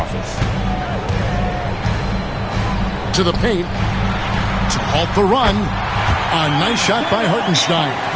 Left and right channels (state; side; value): identical; both; correlation 1.00